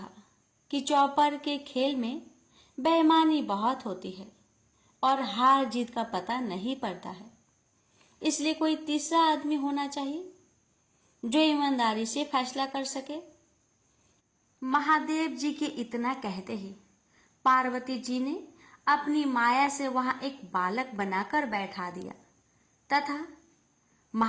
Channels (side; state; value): both; identical; correlation 1.00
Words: कि चौपर के खेल में बेईमानी बहुत होती है और हार जीत का पता नहीं पड़ता है, इसलिए कोई तीसरा आदमी होना चाहिए जो ईमानदारी से फैसला कर सके। महादेव जी के इतना कहते ही पार्वती जी ने अपनी माया से वहां एक बालक बनाकर बैठा दिया तथा